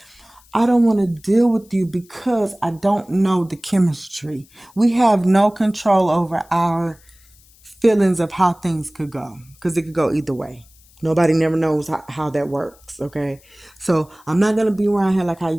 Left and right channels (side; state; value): left; noise; hiss, 28 dB below the sound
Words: I don't want to deal with you because I don't know the chemistry. We have no control over our feelings of how things could go because it could go either way. Nobody never knows how that works, okay? So I'm not gonna be around here like how